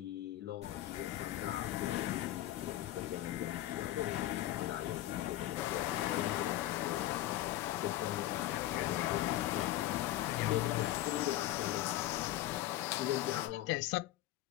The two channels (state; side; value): quieter; right; 14.5 dB